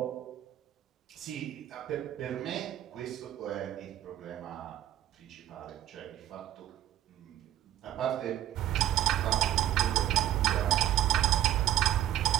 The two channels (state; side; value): quieter; left; 12.4 dB